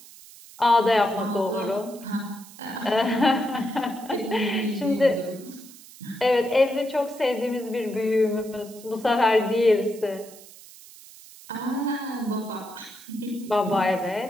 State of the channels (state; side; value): noise; right; hiss, 20 dB below the sound